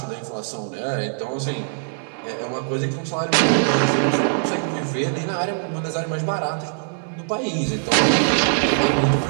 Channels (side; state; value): left; silent; digital silence